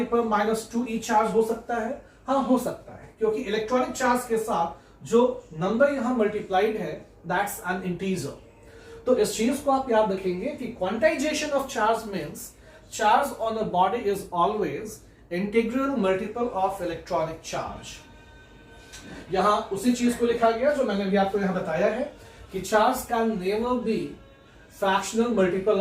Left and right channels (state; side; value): identical; both; correlation 1.00